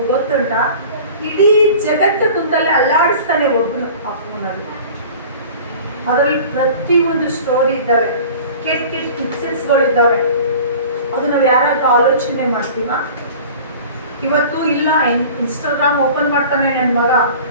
ಗೊತ್ತುಂಟ, ಇಡೀ ಜಗತ್ತು ಕುಂತಲ್ಲೇ ಅಲ್ಲಾಡಿಸ್ತಾನೆ ಒಬ್ರು ಆ ಫೋನಲ್ಲಿ. ಅದರಲ್ಲಿ ಪ್ರತಿಯೊಂದು ಸ್ಟೋರಿ ಇದ್ದಾವೆ, ಕೆಟ್ಟ ಕೆಟ್ಟ ಪಿಕ್ಚರ್ಸ್ಗಳಿದ್ದಾವೆ. ಅದು ನಾವು ಯಾರಾದ್ರೂ ಆಲೋಚನೆ ಮಾಡ್ತೀವ? ಇವತ್ತು ಇಲ್ಲ, ಇನ್ಸ್ಟಾಗ್ರಾಮ್ ಓಪನ್ ಮಾಡ್ತಾನೆ ನನ್ನ ಮಗ,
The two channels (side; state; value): both; inverted; correlation -0.42